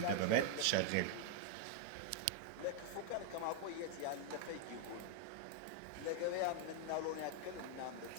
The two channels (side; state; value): both; different; correlation 0.00